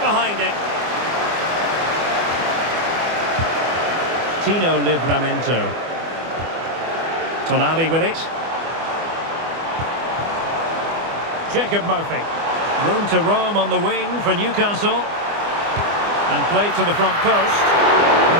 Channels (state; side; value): late; left; 24 ms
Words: behind it. Tino Livramento. Tonali with it. Jacob Murphy. Room to roam on the wing for Newcastle. And played to the front post.